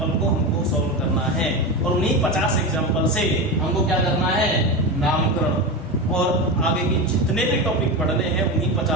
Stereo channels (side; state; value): both; normal; correlation 0.20